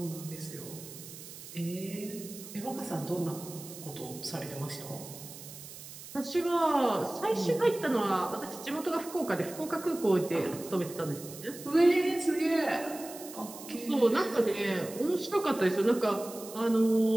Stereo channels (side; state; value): right; noise; hiss, 14 dB below the sound